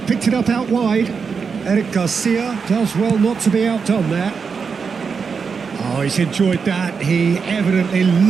it up out wide. Eric Garcia does well not to be outdone there. Oh, he's enjoyed that. He evidently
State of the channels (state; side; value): quieter; left; 5.6 dB